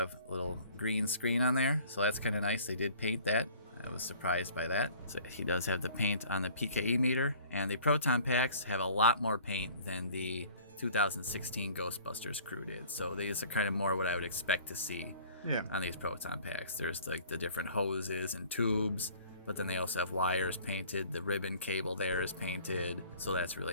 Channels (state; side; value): inverted; both; correlation -0.50